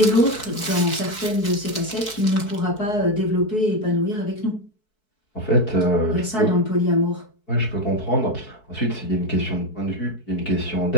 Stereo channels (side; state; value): right; late; 4.6 ms